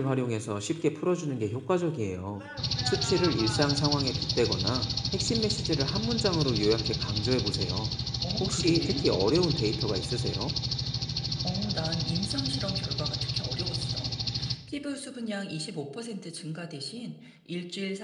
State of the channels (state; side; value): identical; both; correlation 1.00